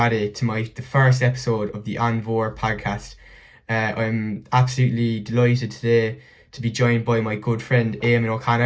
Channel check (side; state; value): both; identical; correlation 1.00